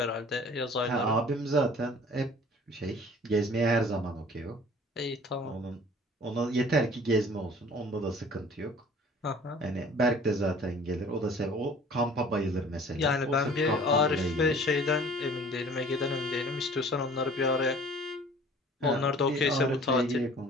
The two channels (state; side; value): normal; both; correlation 0.49